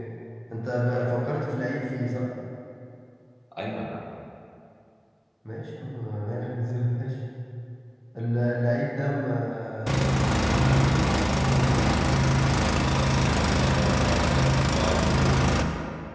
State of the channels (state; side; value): identical; both; correlation 1.00